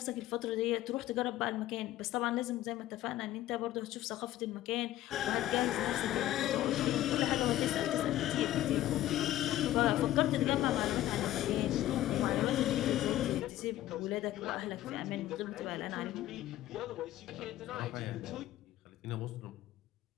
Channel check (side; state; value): right; quieter; 14.2 dB